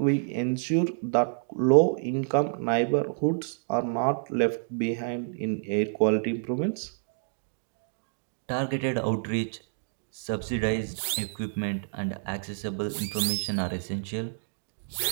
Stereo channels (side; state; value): left; silent; digital silence